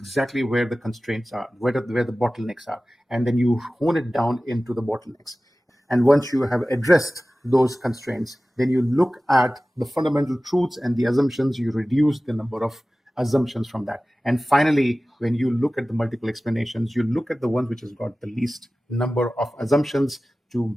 where the constraints are, where the bottlenecks are, and then you hone it down into the bottlenecks. And once you have addressed those constraints, then you look at the fundamental truths and the assumptions, you reduce the number of assumptions from that. And finally, when you look at the multiple explanations, you look at the one which has got the least number of assumptions to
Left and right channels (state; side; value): normal; both; correlation 0.96